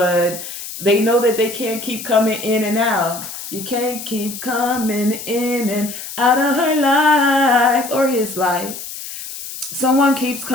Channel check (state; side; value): noise; left; hiss, 10 dB below the sound